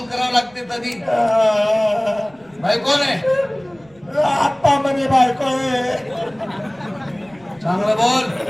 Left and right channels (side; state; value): right; noise; rumble, 29 dB below the sound